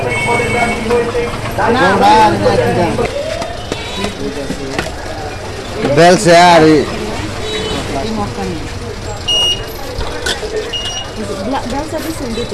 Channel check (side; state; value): both; identical; correlation 1.00